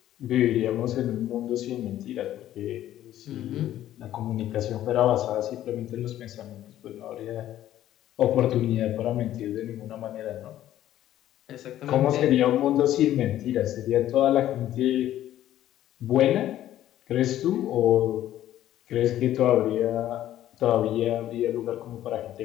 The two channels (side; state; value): right; quieter; 12.7 dB